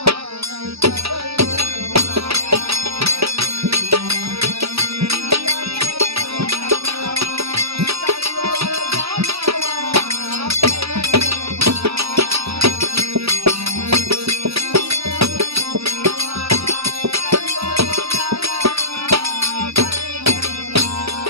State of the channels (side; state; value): left; late; 0.77 ms